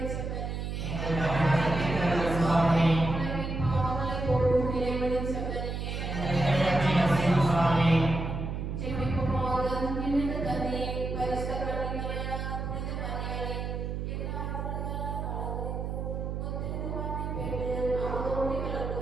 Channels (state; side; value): noise; right; hum, 3 dB below the sound